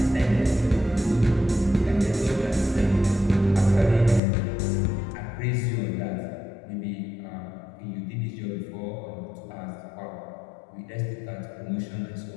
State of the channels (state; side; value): drops out; right; at 4.2 s